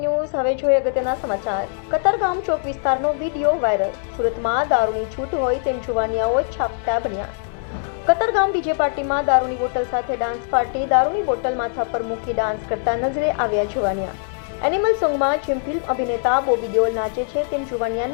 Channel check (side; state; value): right; silent; 65 dB below the other